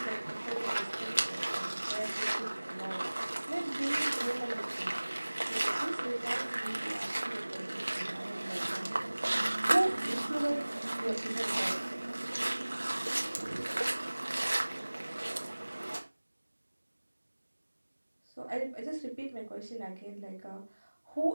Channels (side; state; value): both; inverted; correlation -1.00